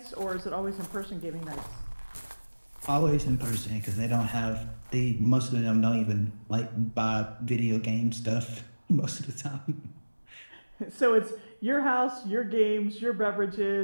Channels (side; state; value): both; inverted; correlation -1.00